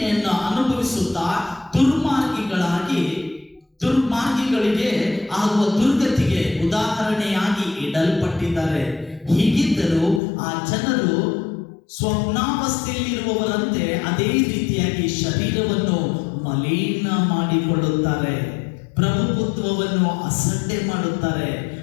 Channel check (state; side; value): drops out; right; at 10.2 s